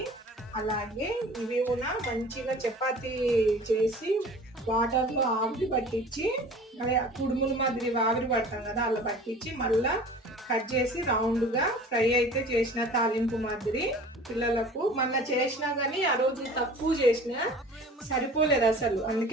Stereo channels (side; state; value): both; normal; correlation 0.44